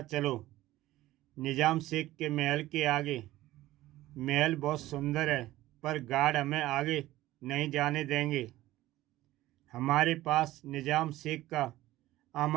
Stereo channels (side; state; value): left; quieter; 16.2 dB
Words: चलो। निजाम शेख के महल के आगे। महल बहुत सुंदर है, पर गार्ड हमें आगे नहीं जाने देंगे। हमारे पास निजाम शेख का